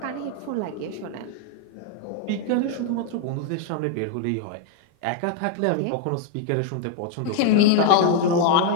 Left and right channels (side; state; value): both; different; correlation 0.00